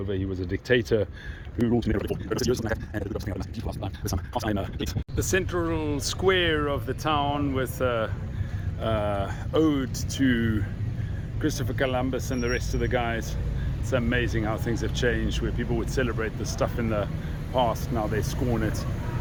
He was a dictator who ruled in the central square of the town with ode to Christopher Columbus and the rest of the guys. It's amazing how things have changed, where people would celebrate this stuff in the past, now they scorn it.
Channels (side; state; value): both; identical; correlation 1.00